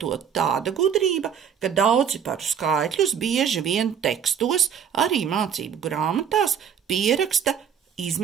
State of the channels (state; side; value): quieter; left; 8.1 dB